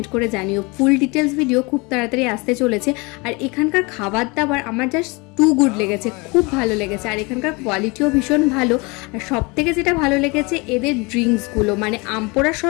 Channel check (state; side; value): quieter; right; 27.2 dB